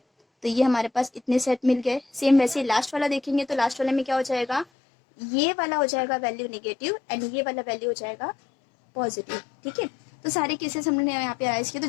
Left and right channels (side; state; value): right; drops out; at 4.7 s